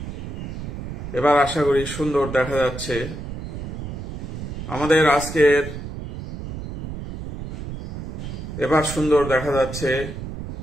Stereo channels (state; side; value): noise; right; rumble, 8 dB below the sound